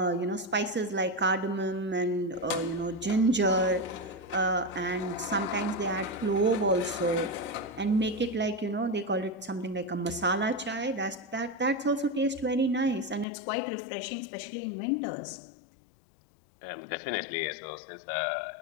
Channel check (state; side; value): drops out; right; at 13.2 s